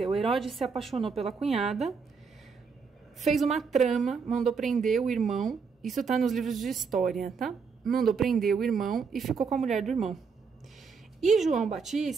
Herodes se apaixonou pela cunhada, fez uma trama, mandou prender o irmão, isso tá nos livros de história, tá? Mandou prender o irmão e ficou com a mulher do irmão. E João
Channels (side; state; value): left; quieter; 5.4 dB